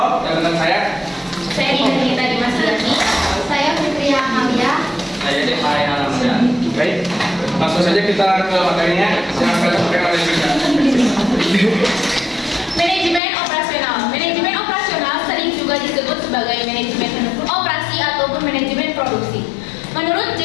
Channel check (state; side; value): drops out; right; at 13.2 s